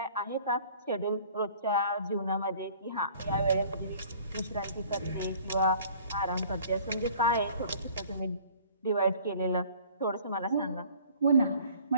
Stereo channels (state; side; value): inverted; both; correlation -0.52